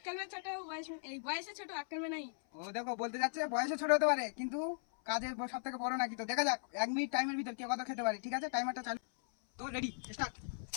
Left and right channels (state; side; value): silent; right; 52 dB below the other